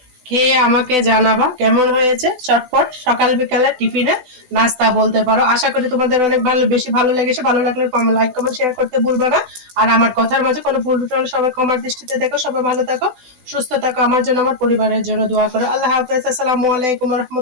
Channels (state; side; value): late; left; 16 ms